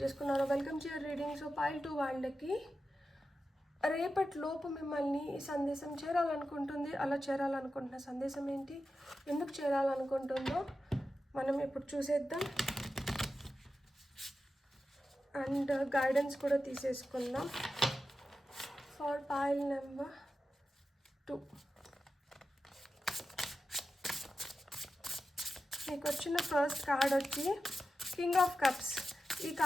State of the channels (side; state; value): both; normal; correlation 0.91